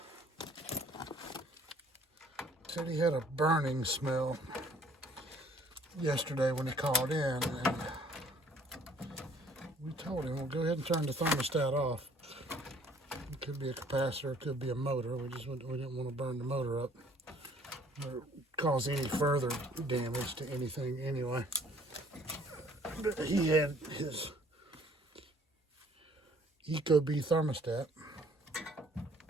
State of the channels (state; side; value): normal; both; correlation 0.58